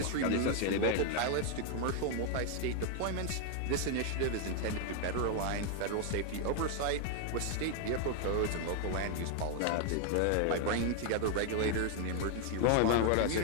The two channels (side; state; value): both; different; correlation 0.00